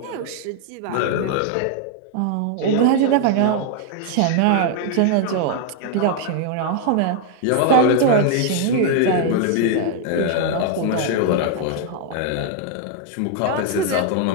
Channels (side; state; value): both; different; correlation 0.00